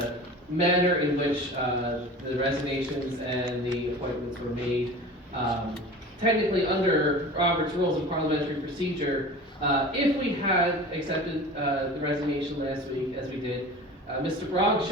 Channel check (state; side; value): normal; both; correlation 0.37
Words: manner in which the resignations and the appointments were made. Technically, under Robert's Rules of Parliamentary Procedure, if we had accepted the resignation last week, as we did, Mr. Brong